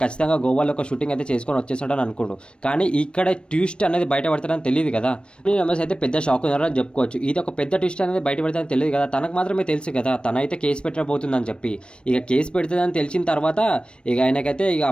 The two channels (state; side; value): late; right; 0.056 ms